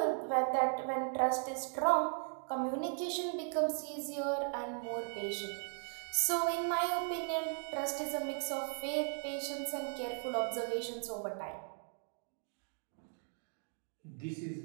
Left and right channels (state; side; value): silent; left; 53 dB below the other